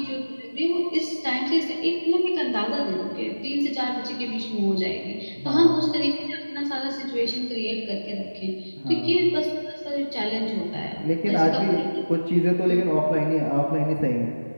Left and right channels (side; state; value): both; inverted; correlation -1.00